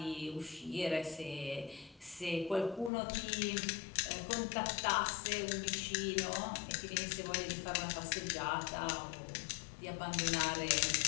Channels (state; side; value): drops out; right; at 2.9 s